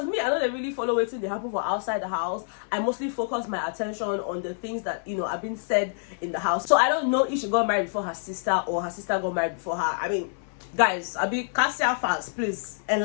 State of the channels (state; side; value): silent; right; 57 dB below the other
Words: me, I don't really follow what's they happen for outside the house. I mostly focus my attention on the things that have been said in the house. So I don't know if she got married before her sister or her sister got married before her. I mean, guys, I be Kassia fans, please